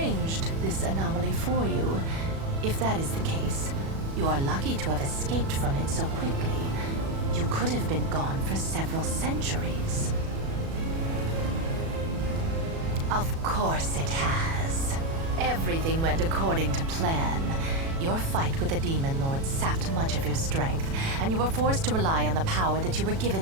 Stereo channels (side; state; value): left; late; 36 ms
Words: this anomaly for you. If that is the case, you are lucky to have escaped from it so quickly. You could have been gone for several centuries. Of course it has. Everything went according to plan. Your fight with the Demon Lord sapped much of your strength, and you were forced to rely on the power that you were